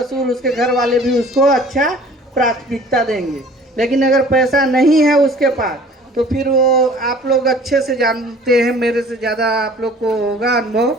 उसके घर वाले भी उसको अच्छा प्राथमिकता देंगे। लेकिन अगर पैसा नहीं है उसके पास तो फिर वो आप लोग अच्छे से जानते हैं, मेरे से ज़्यादा आप लोग को होगा अनुभव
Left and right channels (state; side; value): normal; both; correlation 0.49